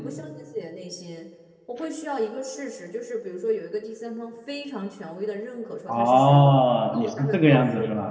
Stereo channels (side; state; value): both; identical; correlation 1.00